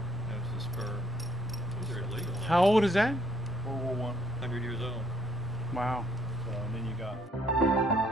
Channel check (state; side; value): normal; both; correlation 0.82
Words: That was the spur. Those are illegal. How old is that? World War 100 years old. Wow. So and then you got.